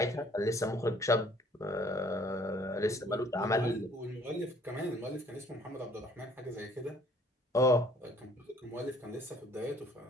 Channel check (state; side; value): normal; both; correlation 0.58